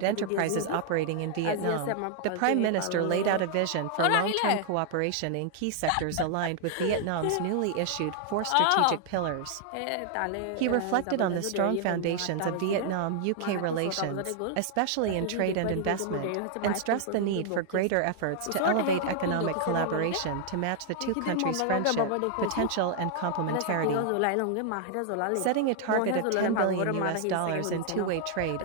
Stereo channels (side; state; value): both; different; correlation 0.00